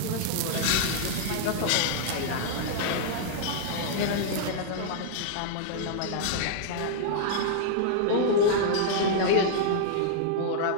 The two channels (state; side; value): different; both; correlation -0.01